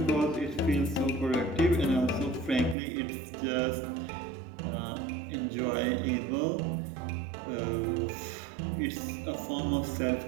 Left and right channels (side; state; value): left; drops out; at 2.8 s